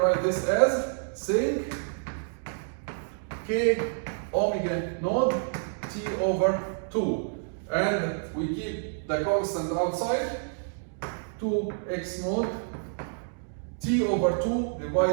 this as sinc k omega naught t over 2. And we keep the constant outside. 2x naught t over 2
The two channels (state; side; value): silent; left; digital silence